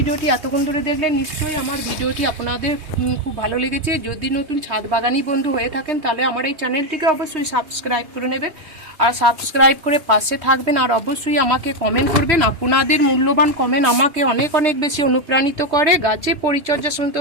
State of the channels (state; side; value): late; left; 3.1 ms